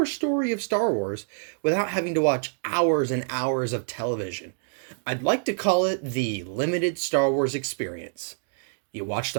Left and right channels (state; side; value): silent; left; digital silence